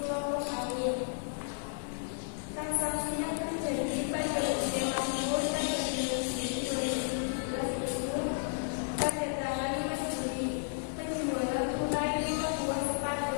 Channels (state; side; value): silent; right; digital silence